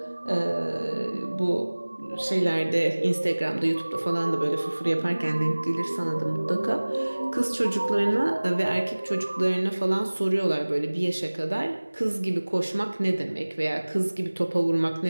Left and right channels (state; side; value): inverted; both; correlation -1.00